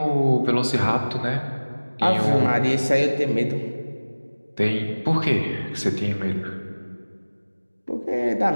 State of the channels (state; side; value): inverted; both; correlation -1.00